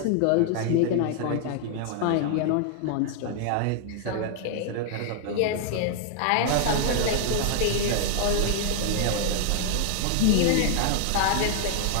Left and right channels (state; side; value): different; both; correlation 0.00